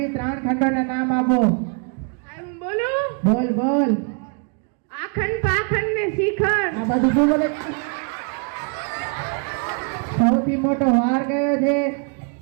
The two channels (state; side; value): quieter; left; 39.0 dB